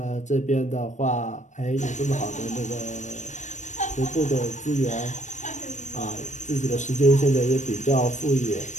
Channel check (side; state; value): right; late; 0.35 ms